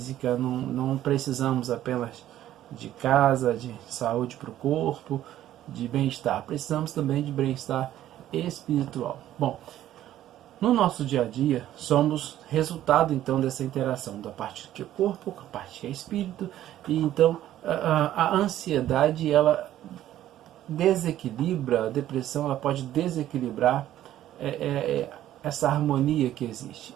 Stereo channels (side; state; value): left; quieter; 12.7 dB